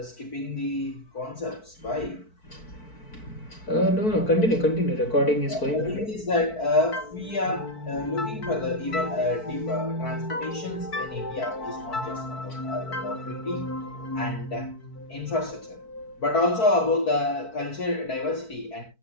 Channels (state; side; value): late; right; 4.6 ms